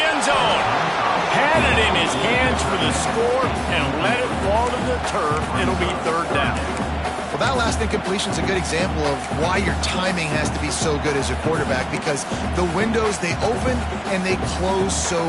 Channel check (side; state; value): both; identical; correlation 1.00